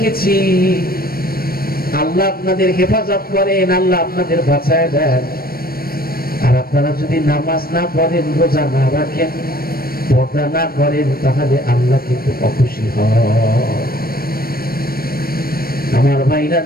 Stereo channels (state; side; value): late; right; 0.44 ms